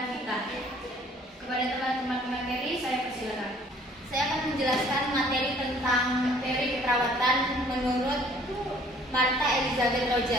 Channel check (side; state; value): both; normal; correlation 0.57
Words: Vita. Kepada teman-teman pemateri, saya persilakan. Saya akan menjelaskan materi tentang teori keperawatan menurut Martha Elizabeth